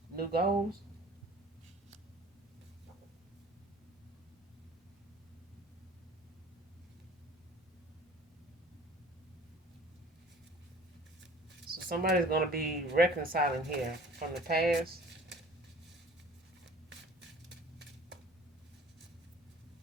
new goals. So somebody's going to be reconciling here from the past.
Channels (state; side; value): normal; both; correlation 0.48